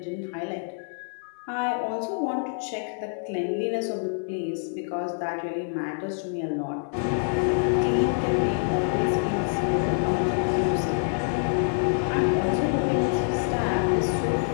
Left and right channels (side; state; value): right; silent; digital silence